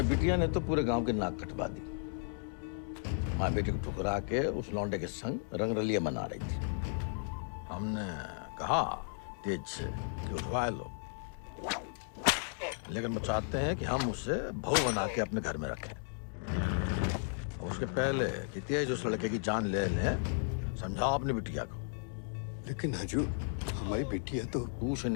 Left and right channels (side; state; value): right; silent; digital silence